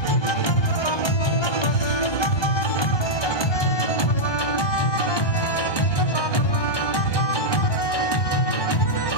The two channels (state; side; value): late; right; 1.2 ms